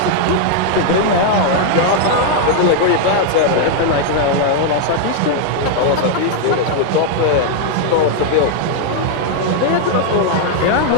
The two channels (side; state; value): both; different; correlation 0.00